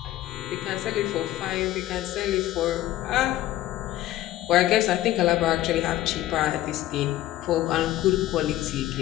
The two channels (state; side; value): quieter; right; 14.6 dB